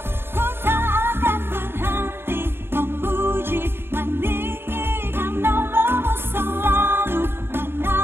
ku tak akan berhenti memuji, meninggikan nama-Mu, selalu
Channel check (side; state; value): left; late; 0.11 ms